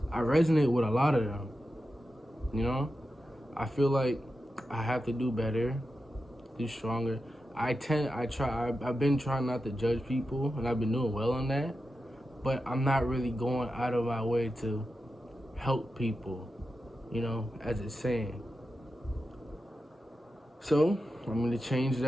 I resonate with a lot of them. You know, I feel like I have to do better, do stronger. I've been trying not to judge people, and I've been doing well on that, but I'm not really going out of my way to help people, you know, as it's saying. So I'm going to change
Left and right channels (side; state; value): both; normal; correlation 0.90